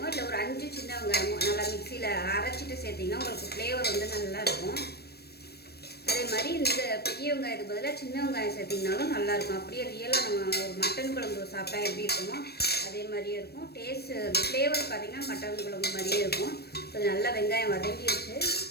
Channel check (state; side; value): late; right; 0.47 ms